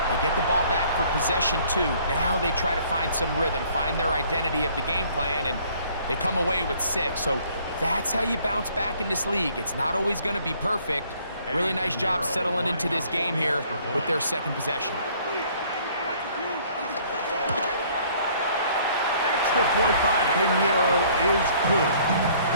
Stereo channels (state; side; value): inverted; both; correlation -0.59